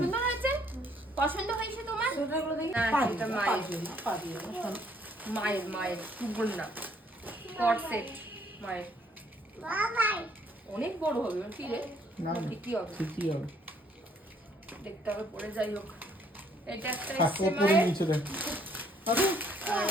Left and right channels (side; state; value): both; normal; correlation 0.65